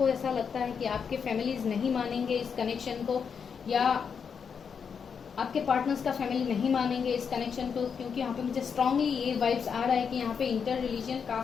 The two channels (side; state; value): right; quieter; 6.5 dB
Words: ऐसा लगता है कि आपके फैमिलीज नहीं मानेंगे इस कनेक्शन को, या आपके पार्टनर्स का फैमिली नहीं मानेंगे इस कनेक्शन को, क्योंकि यहाँ पे मुझे स्ट्रांगली ये वाइब्स आ रहा है कि यहाँ पे इंटर रिलीजन